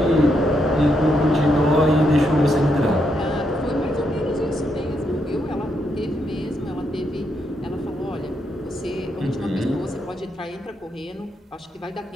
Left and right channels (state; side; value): normal; both; correlation 0.79